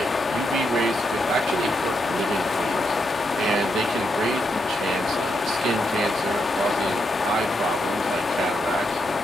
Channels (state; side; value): normal; both; correlation 0.82